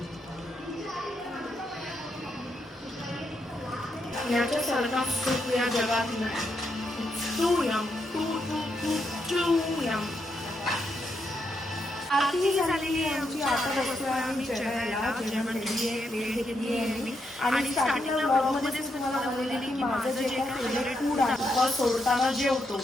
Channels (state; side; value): normal; both; correlation 0.81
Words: याच्या सारखा सुख या जगात नाही. तू यम आरती झालेली आहे आमची. आता बसलो आम्ही जेवायला. जेवण घेतली आहे, वेळ घेतली आहे मी. आणि स्टार्टिंगला ब्लॉगमध्येच तुम्हाला बोललेली की माझं जे काही फेवरेट फूड आहे सोडताना जेवतो